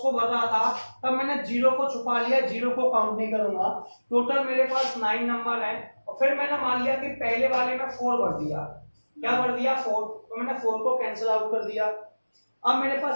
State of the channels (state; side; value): inverted; both; correlation -1.00